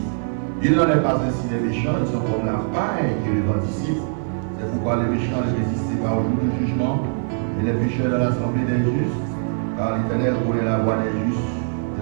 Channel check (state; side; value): silent; left; 64 dB below the other